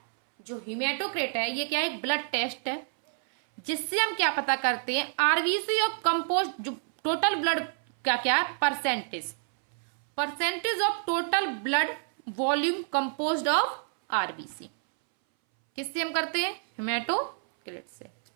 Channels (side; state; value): left; silent; 59 dB below the other